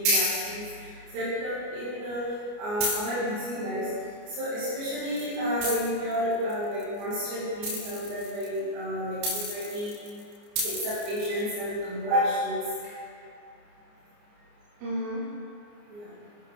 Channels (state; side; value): late; left; 29 ms